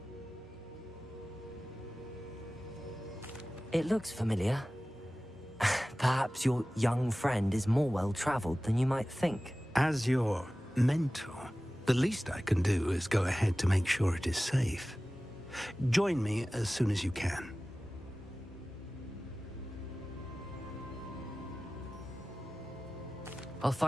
It looks familiar. Perhaps your young friend is more well-traveled than you might think. As your mentor, the least I can do is go ahead to make sure it is safe. Join me as soon as you can. I'll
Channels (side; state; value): both; normal; correlation 0.97